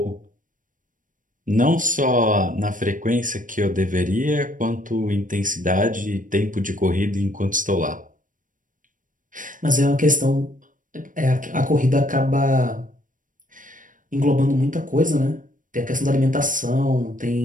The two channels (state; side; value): late; left; 0.38 ms